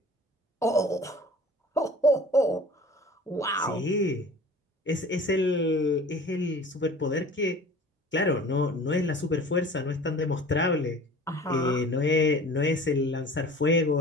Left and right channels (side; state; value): both; normal; correlation 0.43